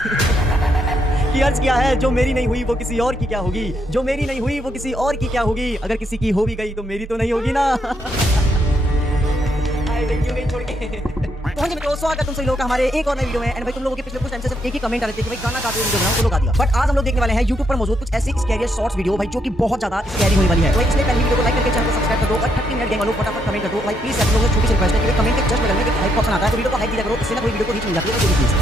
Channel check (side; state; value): both; normal; correlation 0.76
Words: कि अर्ज किया है जो मेरी नहीं हुई वो किसी और की क्या होगी, जो मेरी नहीं हुई वो किसी और की क्या होगी, अगर किसी की हो भी गई तो मेरी तो नहीं होगी ना। क्यों गई छोड़ के। तो हाँ जी मित्रों, स्वागत तुम सभी लोगों का हमारे एक और नए वीडियो में। एंड भाई तुम लोगों के पिछले कुछ टाइम से सिर्फ एक ही कमेंट आ रहे थे कि भाई गाना गाते हुए वीडियो बनाओ, तो लोग आ दिया। बट आज हम लोग देखने वाले हैं YouTube पर मौजूद कुछ ऐसी स्कैरी शॉर्ट्स वीडियो भाई जो कि बहुत ज्यादा स्कैरी होने वाली है। तो इसलिए पहले वीडियो को लाइक करके चैनल को सब्सक्राइब कर दो और 30 मिनट गेम वालों फटाफट कमेंट कर दो भाई प्लीज। आप लोगों से छोटी सी रिक्वेस्ट है कि कमेंट के जस्ट बगल में एक हाइप ऑप्शन आता है तो वीडियो को हाइप दिया करो, इससे ना कोई वीडियो को रीच मिल जाती है।